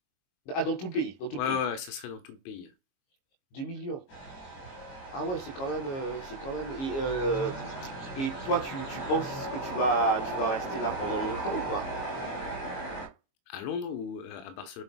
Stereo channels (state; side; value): late; right; 22 ms